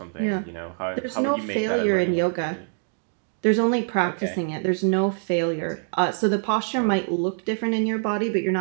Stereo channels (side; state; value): left; silent; digital silence